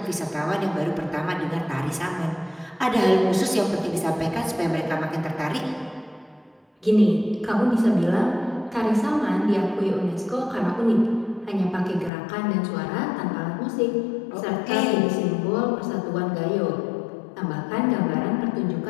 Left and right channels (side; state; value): right; drops out; at 12.1 s